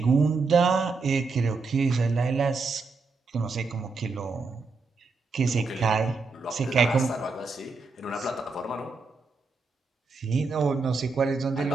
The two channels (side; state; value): left; quieter; 4.2 dB